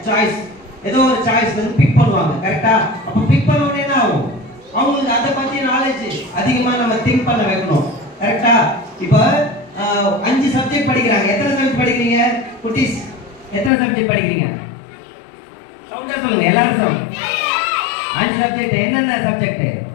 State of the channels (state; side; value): drops out; right; at 13.7 s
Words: ஒரு சாய்ஸ் வந்து பிக் பண்ணுவாங்க. கரெக்டா? அப்ப பிக் பண்ண உடனே என்ன ஆகும்? அவங்களுக்கு அதை பத்தி நாலேஜ் அதிகமா நம்ம திங்க் பண்ண வைக்கணும். கரெக்டா? இப்ப 5 சப்ஜெக்ட் படிக்கிறாங்க. எத்தனை சப்ஜெக்ட் படிக்கிறீங்க குட்டீஸ்? எத்தனை சப்ஜெக்ட் படிக்கிறீங்க? சவுண்டா சொல்லுங்க எல்லாரும். 5 சப்ஜெக்ட். என்னென்ன சப்ஜெக்ட்?